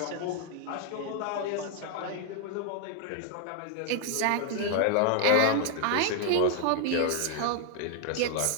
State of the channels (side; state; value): both; different; correlation 0.00